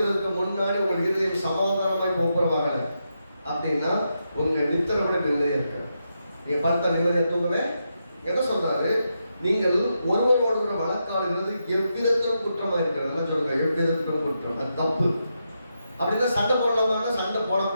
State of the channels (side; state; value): both; inverted; correlation -0.85